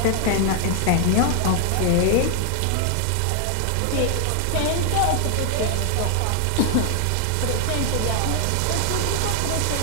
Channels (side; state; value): both; different; correlation 0.00